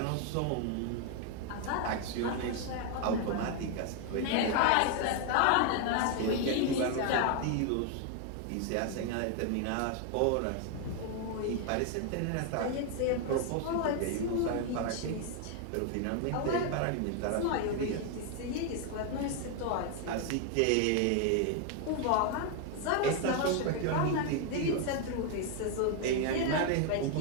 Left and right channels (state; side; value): different; both; correlation 0.01